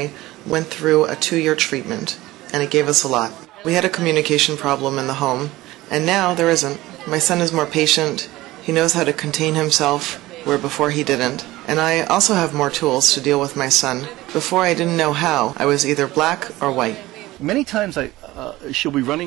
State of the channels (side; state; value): left; quieter; 17.9 dB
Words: went through a 2-year treatment, and it gave us a lot. We had a communication problem in the home, and now there isn't. My son is more patient. He knows how to contain himself, where before he didn't. And I also have more tools to deal with my son. Before I didn't know how. I was either black or white. Many times she'll be